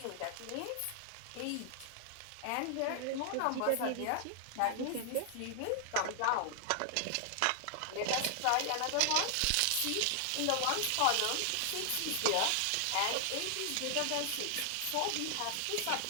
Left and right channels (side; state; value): both; different; correlation 0.00